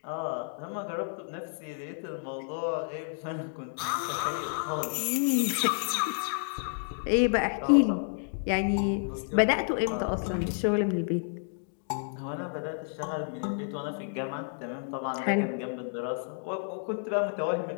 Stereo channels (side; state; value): right; silent; digital silence